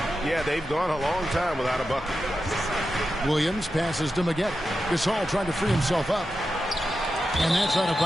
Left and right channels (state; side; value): normal; both; correlation 0.90